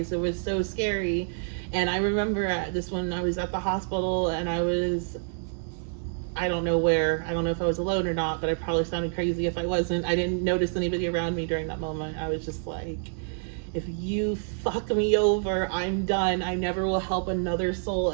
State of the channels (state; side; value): silent; left; 57 dB below the other